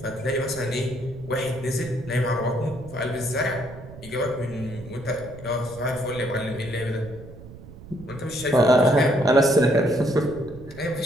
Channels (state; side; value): noise; right; rumble, 16 dB below the sound